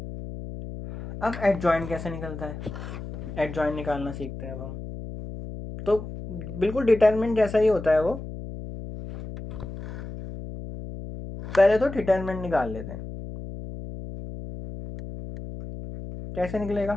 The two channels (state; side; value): noise; left; hum, 10 dB below the sound